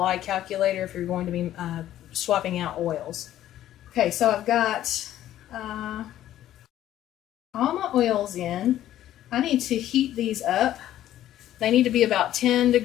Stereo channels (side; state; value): right; quieter; 12.7 dB